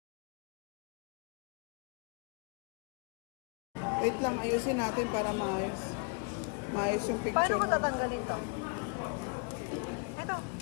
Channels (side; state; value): right; quieter; 38.9 dB